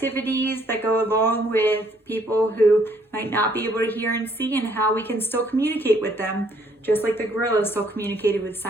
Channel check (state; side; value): normal; both; correlation 0.65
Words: that go along with people who might not be able to hear and see, and how we can still communicate with them, just like the gorillas still communicated with